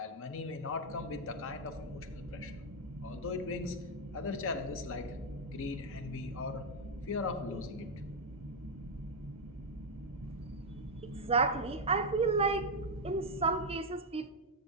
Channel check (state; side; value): normal; both; correlation 0.02